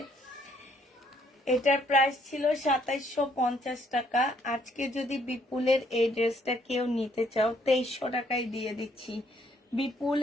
এটার প্রাইস ছিল 2750 টাকা। আজকে যদি বিপুলের এই ড্রেসটা কেউ নিতে চাও 2300 টাকায় দিয়ে দিচ্ছি।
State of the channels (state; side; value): normal; both; correlation 0.67